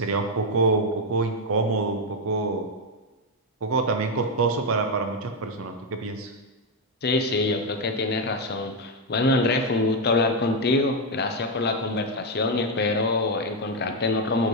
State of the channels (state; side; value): normal; both; correlation 0.04